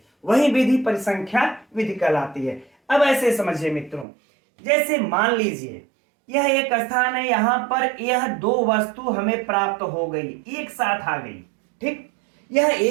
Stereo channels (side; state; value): left; drops out; at 4.0 s